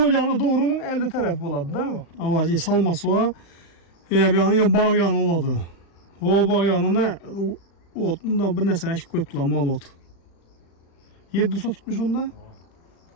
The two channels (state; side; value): late; right; 35 ms